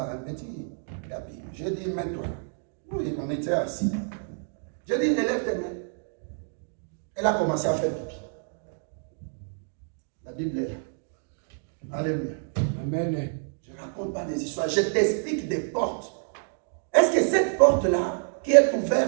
un petit tapis. J'ai dit, mets-toi là. Oui, on était assis. J'ai dit, élève tes mains. Elle a commencé à faire pipi. La Bible est là. Alléluia. Amen. Je ne raconte pas des histoires, je t'explique des portes. Est-ce que cette porte-là, qui est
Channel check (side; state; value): left; silent; 60 dB below the other